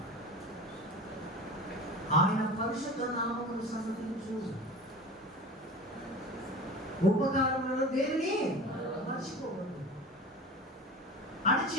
ఆయన పరిశుద్ధ నామమును సన్నతించు. ఉపకారములను దేనిని మర్చిపోవద్దు అని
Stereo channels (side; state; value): both; normal; correlation 0.34